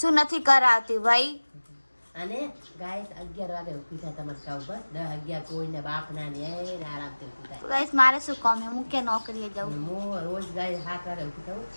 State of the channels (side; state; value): both; inverted; correlation -1.00